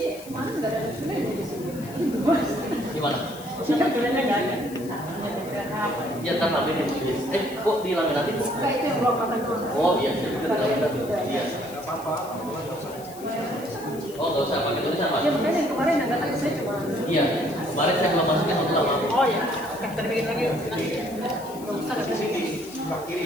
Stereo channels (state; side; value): noise; left; hiss, 18 dB below the sound